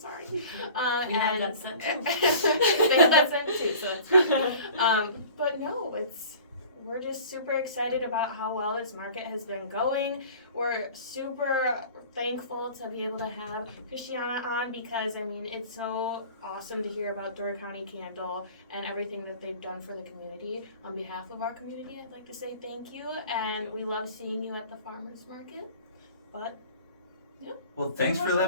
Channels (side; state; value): both; inverted; correlation -0.44